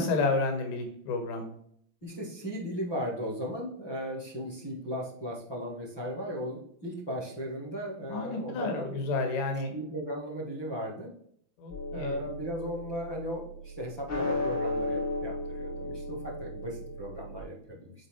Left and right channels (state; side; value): late; right; 5.9 ms